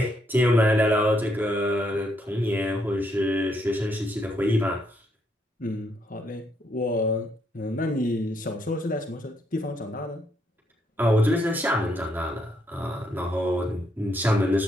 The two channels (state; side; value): normal; both; correlation 0.75